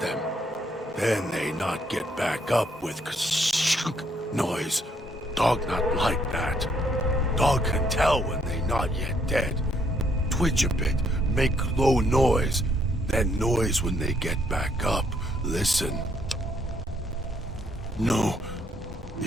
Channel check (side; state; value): both; normal; correlation 0.70